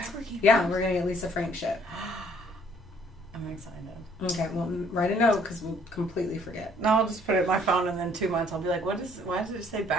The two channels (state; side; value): normal; both; correlation 0.61